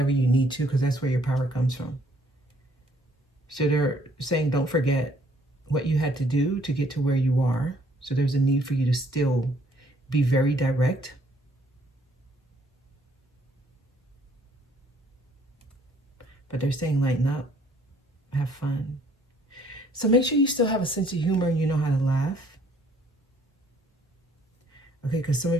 you need to, because that's where your power comes from. So they're saying don't forget what you had to do to get to where you are. So there's a need for you to still be very direct. But they're saying lighten up, have fun. So make sure you still have a sense of humor and you know how to laugh. Okay, because some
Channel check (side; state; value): both; normal; correlation 0.63